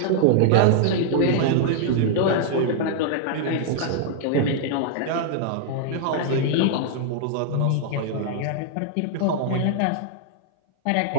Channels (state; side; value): different; both; correlation -0.01